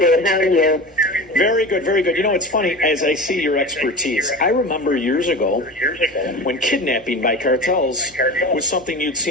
How are you? Very good, very good. You know, it's funny, as I see your expertise, I remember years ago when kidnapping by cartels was something you'd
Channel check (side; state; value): both; normal; correlation 0.31